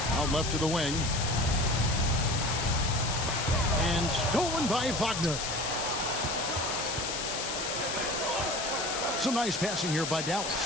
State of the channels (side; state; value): left; noise; hiss, 3 dB below the sound